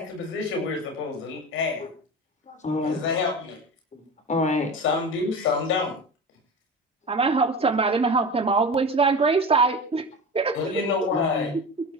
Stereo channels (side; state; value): both; normal; correlation 0.29